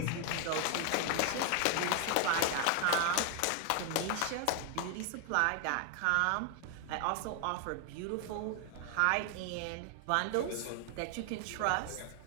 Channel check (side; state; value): both; different; correlation 0.00